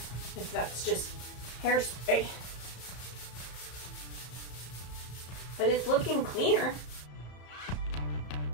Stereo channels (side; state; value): right; late; 33 ms